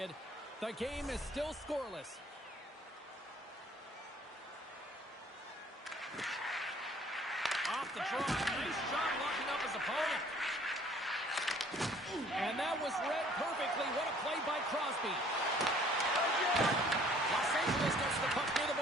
The game is still scoreless. Off the draw. Nice job locking up his opponent. And that was read perfectly. What a play by Crosby. Los Angeles gets the puck near the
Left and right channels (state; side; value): normal; both; correlation 0.56